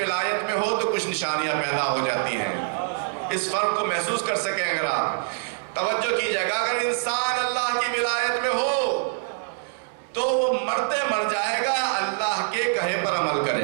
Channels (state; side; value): silent; left; 62 dB below the other